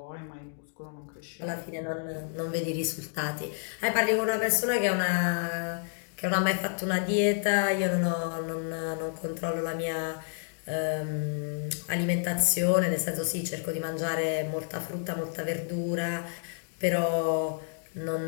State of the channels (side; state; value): right; silent; digital silence